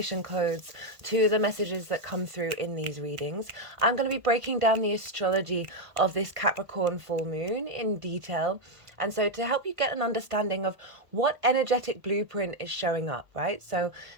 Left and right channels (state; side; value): late; left; 1.5 ms